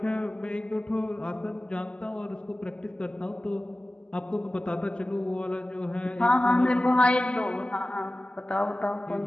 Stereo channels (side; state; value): right; late; 0.053 ms